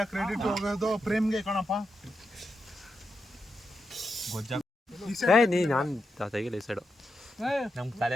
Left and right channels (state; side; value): normal; both; correlation 0.86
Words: ಕ್ರೆಡಿಟ್ ಹೋಗೋದು ಪ್ರೇಮ್ಗೆ ಕಣಪ್ಪ. ಗೊಜ್ಜ ಏ ನೀ ನಾನು ತೆಗಿಲ್ಲ ಈ ಸೈಡು ನಮ್ಗೆ ತಲೆ